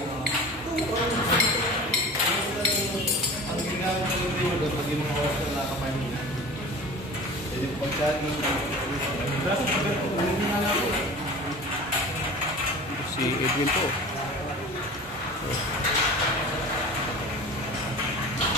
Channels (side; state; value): both; normal; correlation 0.38